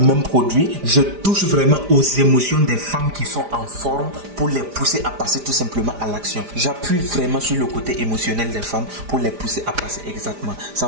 produit, je touche vraiment aux émotions des femmes qui sont en forme pour les pousser à passer tout simplement à l'action. J'appuie vraiment sur le côté émotionnel des femmes pour les pousser à passer exactement. Ça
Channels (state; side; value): late; left; 5.0 ms